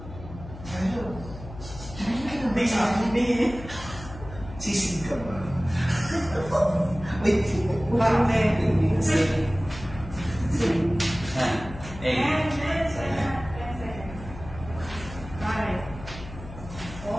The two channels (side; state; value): left; noise; hum, 14 dB below the sound